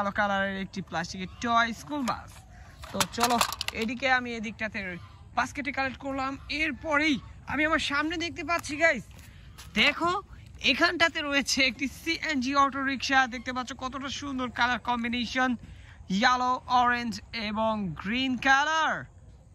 কালারের একটি প্লাস্টিকের টয় স্কুল বাস। তো চলো এদিকে আমি এদিকটাতে বাস্কেটে কালেক্ট করলাম। এরপরেই আমি আমার সামনে দেখতে পাচ্ছি গাইস, দেখো এখানটাতে রয়েছে একটি সিএনজি অটো রিক্সা। দেখতে পাচ্ছ কতটা সুন্দর কালার কম্বিনেশন, ইয়েলো, অরেঞ্জ এবং গ্রিন কালার।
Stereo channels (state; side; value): identical; both; correlation 1.00